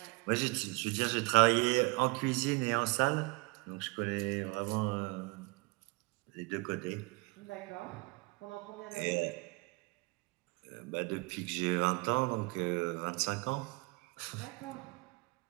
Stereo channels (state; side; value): quieter; left; 27.3 dB